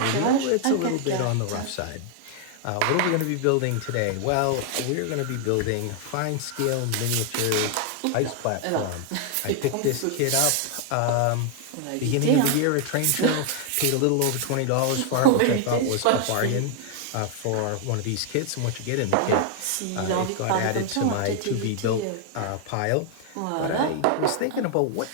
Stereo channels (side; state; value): both; different; correlation 0.00